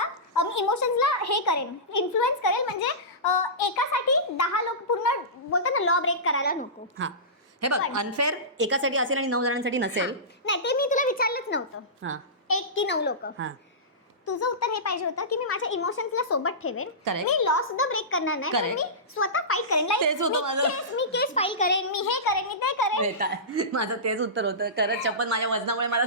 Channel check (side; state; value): both; normal; correlation -0.20